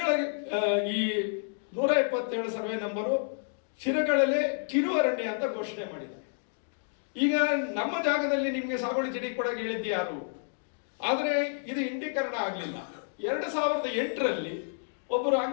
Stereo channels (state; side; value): silent; right; digital silence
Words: ಈ 177 ಸರ್ವೆ ನಂಬರು ಶಿರಗಳಲ್ಲೇ ಕಿರು ಅರಣ್ಯ ಅಂತ ಘೋಷಣೆ ಮಾಡಿದ್ದಾರೆ. ಈಗ ನಮ್ಮ ಜಾಗದಲ್ಲಿ ನಿಮ್ಗೆ ಸಾಗುವಳಿ ಚೀಟಿ ಕೊಡಕ್ಕೆ ಹೇಳಿದ್ದು ಯಾರು? ಆದ್ರೆ ಇದು ಇಂಡೀಕರಣ ಆಗ್ಲಿಲ್ಲ. 2008ರಲ್ಲಿ ಒಬ್ಬರು